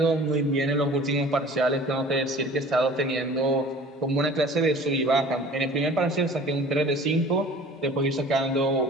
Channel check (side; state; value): both; normal; correlation 0.45